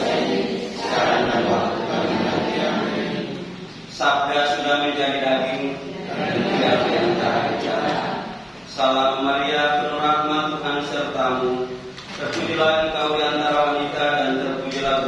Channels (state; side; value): identical; both; correlation 1.00